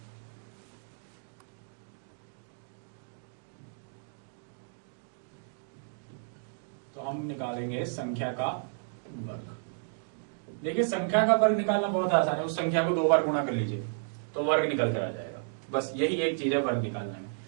तो हम निकालेंगे संख्या का वर्ग। देखिए, संख्या का वर्ग निकालना बहुत आसान है। उस संख्या को 2 बार गुणा कर लीजिए तो वर्ग निकल कर आ जाएगा। बस यही एक चीज है वर्ग निकालने में।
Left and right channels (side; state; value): left; silent; digital silence